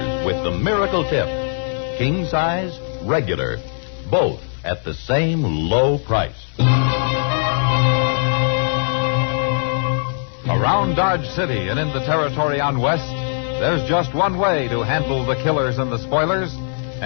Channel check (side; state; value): right; silent; 62 dB below the other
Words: with the miracle tip. King size, regular, both at the same low price. Around Dodge City and in the territory on West, there's just one way to handle the killers and the spoilers,